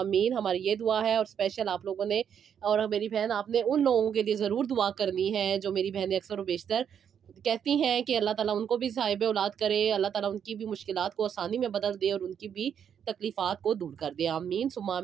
हमारी ये दुआ है, और स्पेशल आप लोगों ने और मेरी बहन आपने उन लोगों के लिए ज़रूर दुआ करनी है जो मेरी बहनें अक्सर व बेशतर कहती हैं कि अल्लाह ताला उनको भी साहिब औलाद करे, अल्लाह ताला उनकी भी मुश्किलात को आसानी में बदल दे और उनकी भी तकलीफ़ात को दूर कर दे। आमीन सुम्मा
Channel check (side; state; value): left; quieter; 8.2 dB